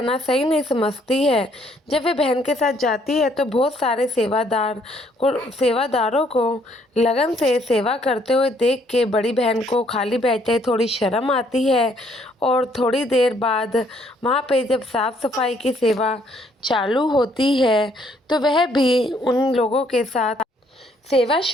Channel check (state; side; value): normal; both; correlation 0.66